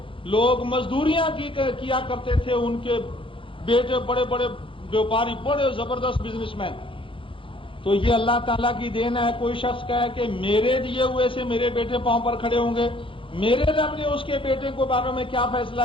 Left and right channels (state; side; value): late; right; 0.25 ms